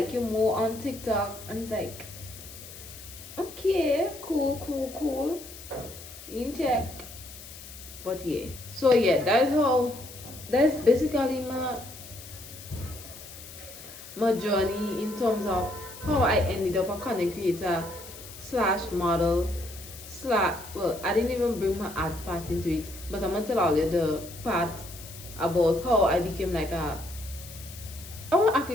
you're more on TikTok." And it's like, okay, cool. In check. But yeah. So yeah, that's basically my journey in terms of how I ended up a content creator slash model slash, well, I didn't even bring my art part into it, but I'm gonna tell all you the part about how I became like a, oh, I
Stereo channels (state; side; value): noise; left; hiss, 15 dB below the sound